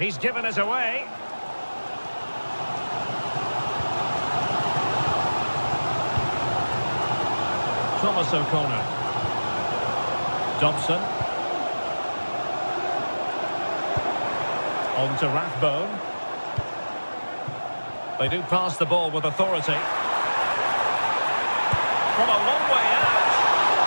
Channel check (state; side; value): inverted; both; correlation -1.00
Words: given us away. Thomas O'Connor. Dobson. On to Rathbone. They do pass the ball with authority. From a long way out.